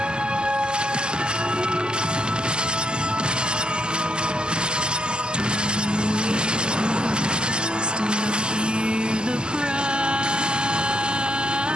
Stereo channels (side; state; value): left; late; 0.047 ms